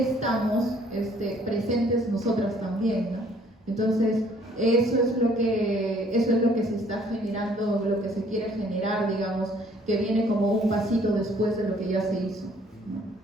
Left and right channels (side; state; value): both; normal; correlation 0.60